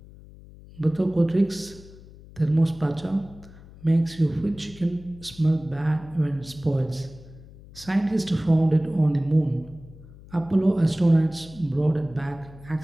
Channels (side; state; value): left; noise; hum, 20 dB below the sound